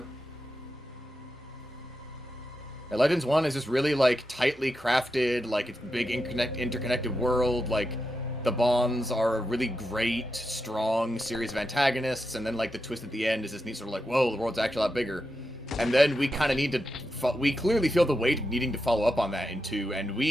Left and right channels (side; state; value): both; normal; correlation 0.87